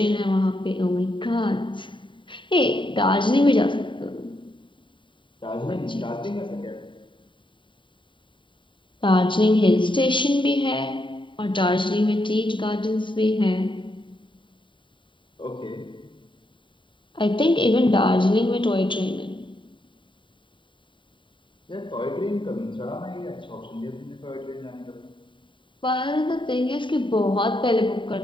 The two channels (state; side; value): late; right; 0.24 ms